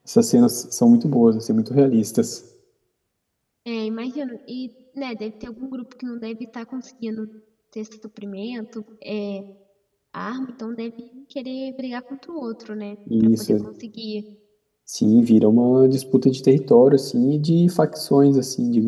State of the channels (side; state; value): both; identical; correlation 1.00